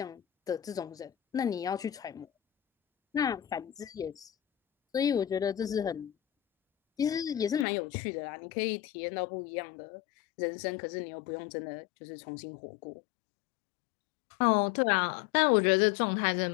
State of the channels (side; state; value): right; drops out; at 7.7 s